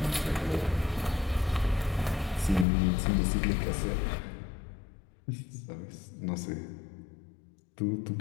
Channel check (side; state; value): right; drops out; at 2.7 s